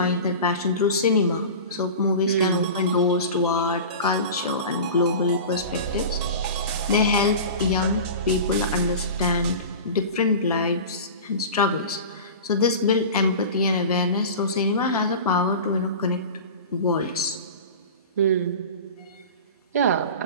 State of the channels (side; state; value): both; inverted; correlation -0.33